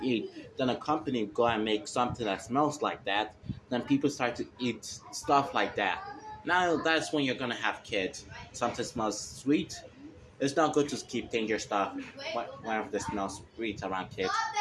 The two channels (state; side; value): identical; both; correlation 1.00